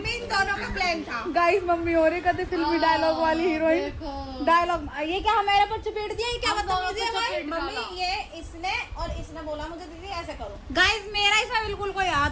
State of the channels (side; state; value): both; identical; correlation 1.00